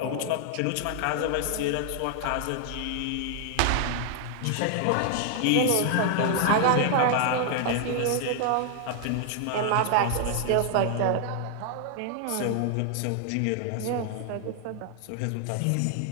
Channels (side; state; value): both; different; correlation 0.00